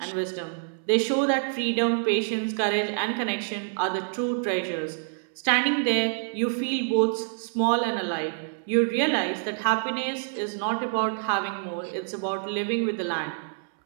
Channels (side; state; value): left; silent; 60 dB below the other